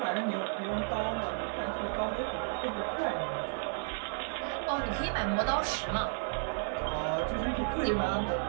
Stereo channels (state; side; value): silent; left; 56 dB below the other